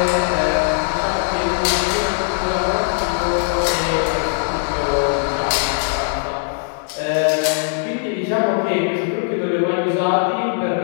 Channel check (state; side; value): silent; right; digital silence